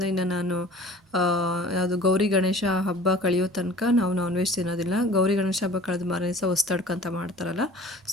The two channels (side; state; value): both; normal; correlation 0.45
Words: ಇನ್ನು ನಾನು ಯಾವುದು ಗೌರಿ ಗಣೇಶ ಹಬ್ಬ ಕಳೆಯೋ ತನಕ ನಾವು ನಾನ್ ವೆಜ್ ತಿನ್ನೋದಿಲ್ಲ. ಗೌರಿ ಗಣೇಶ ಹಬ್ಬ ಕಳೆದ ಮಾರನೇ ದಿವಸ ಹೊಸ್ತಡ್ಕಂತ ಮಾಡ್ತಾರಲ್ಲ,